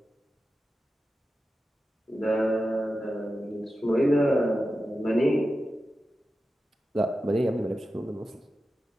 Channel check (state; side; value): normal; both; correlation 0.92